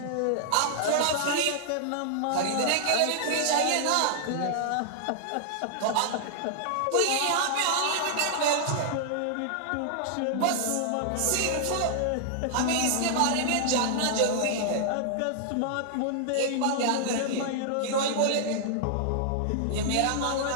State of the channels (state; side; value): different; both; correlation -0.01